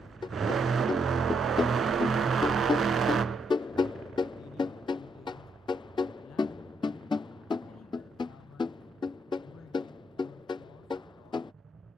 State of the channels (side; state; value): both; normal; correlation 0.77